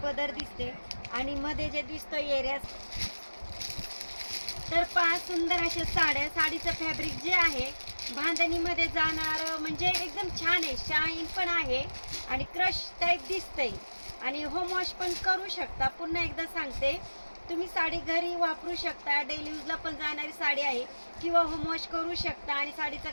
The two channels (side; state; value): both; inverted; correlation -1.00